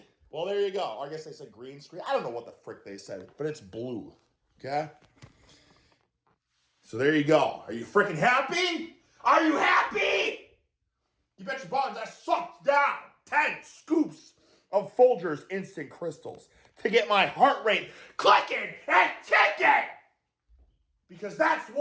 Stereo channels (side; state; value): both; identical; correlation 1.00